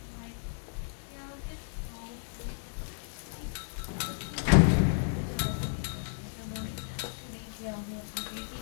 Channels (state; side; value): silent; right; digital silence